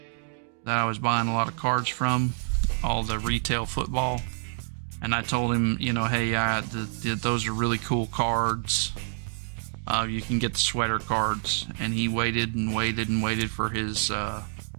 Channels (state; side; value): silent; left; 60 dB below the other